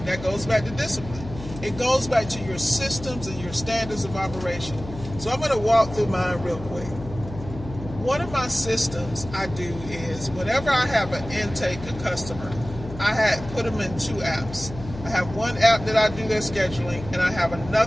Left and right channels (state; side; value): noise; left; hum, 12 dB below the sound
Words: That goes back to discipline. It goes back to your systems and your standards of operation. So I'm going to walk through mine real quick. One of my systems I do is whenever I have an intake, a customer, I put them in two apps. I have one app that I do their scheduling, and I have